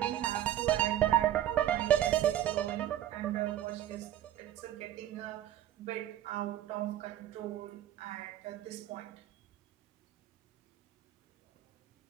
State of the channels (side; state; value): left; quieter; 12.2 dB